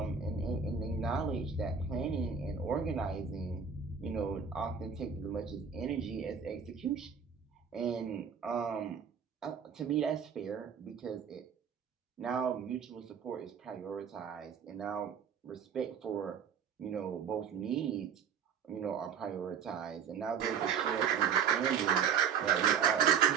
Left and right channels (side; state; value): left; quieter; 7.0 dB